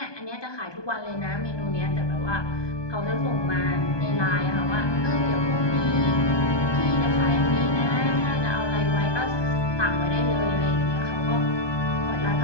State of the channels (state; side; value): late; right; 1.2 ms